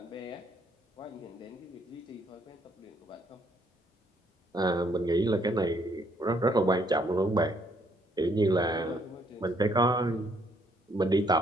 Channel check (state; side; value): normal; both; correlation 0.68